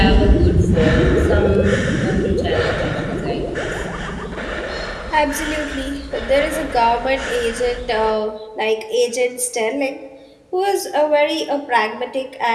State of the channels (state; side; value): identical; both; correlation 1.00